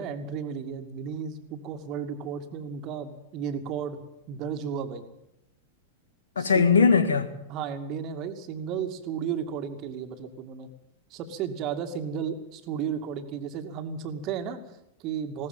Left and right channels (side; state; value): both; inverted; correlation -0.39